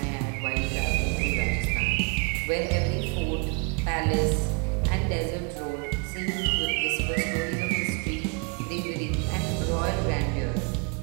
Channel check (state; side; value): quieter; left; 34.1 dB